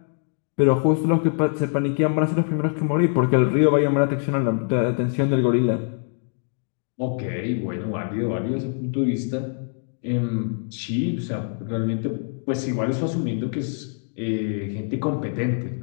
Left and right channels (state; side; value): silent; right; 63 dB below the other